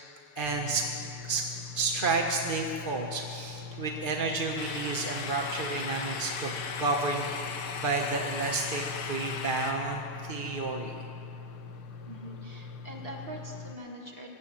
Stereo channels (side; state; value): right; late; 6.7 ms